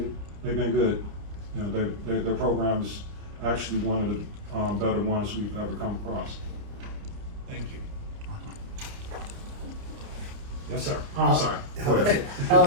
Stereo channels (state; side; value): late; left; 29 ms